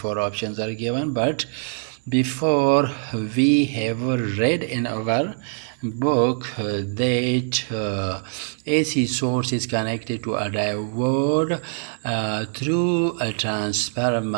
options are given, but before we have read in our book that AC source is connected to a diode through a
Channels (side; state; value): left; silent; digital silence